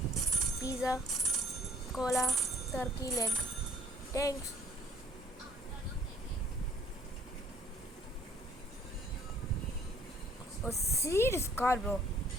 pizza, cola, turkey leg. Thanks. Oh, see this car, bro.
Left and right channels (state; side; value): normal; both; correlation 0.56